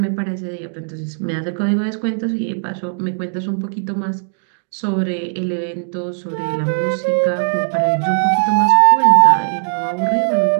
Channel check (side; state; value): left; silent; digital silence